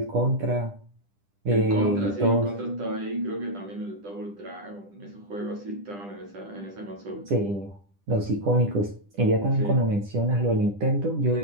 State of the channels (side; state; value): left; late; 10 ms